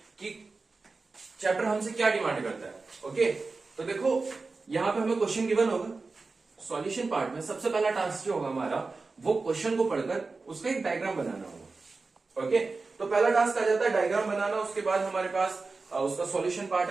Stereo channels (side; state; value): left; quieter; 3.9 dB